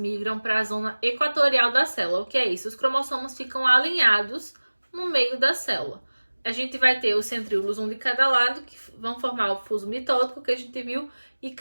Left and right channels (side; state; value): both; inverted; correlation -1.00